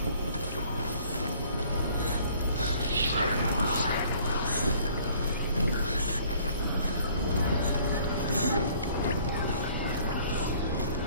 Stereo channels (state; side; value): inverted; both; correlation -0.56